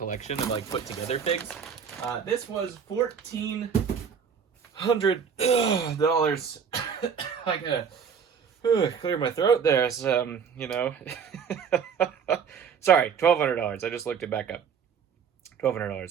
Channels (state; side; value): quieter; left; 6.9 dB